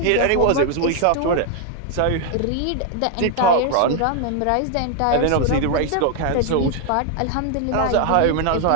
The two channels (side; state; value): both; different; correlation 0.00